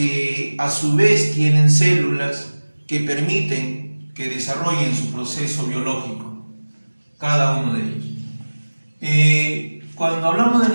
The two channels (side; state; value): both; inverted; correlation -1.00